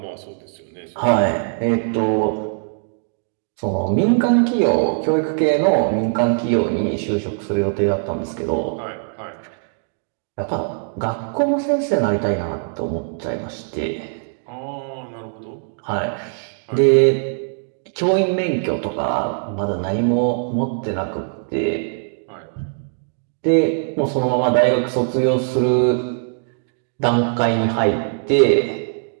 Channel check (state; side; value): silent; left; digital silence